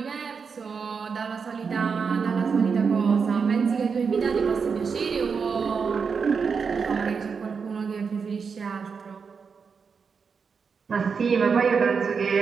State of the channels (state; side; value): quieter; left; 5.7 dB